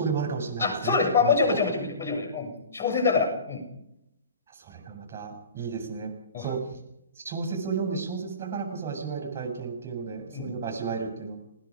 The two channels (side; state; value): both; inverted; correlation -0.37